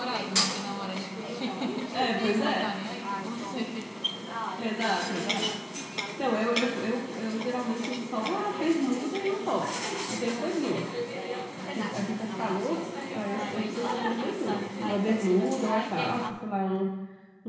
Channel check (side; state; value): both; identical; correlation 1.00